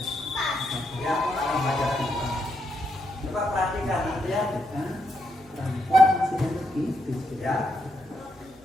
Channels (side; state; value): both; normal; correlation 0.80